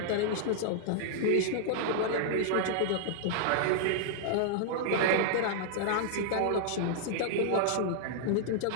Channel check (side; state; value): both; different; correlation -0.01